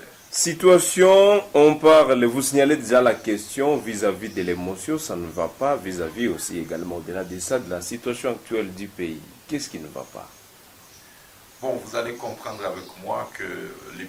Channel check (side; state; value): both; identical; correlation 1.00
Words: Situation, on parle, vous signalez déjà la question vis-à-vis de l'émotion, ça ne va pas, vis-à-vis aussi également au-delà de ça, de la situation actuelle du pays. Qu'est-ce qui ne va pas? Bon, vous allez comprendre avec moi que le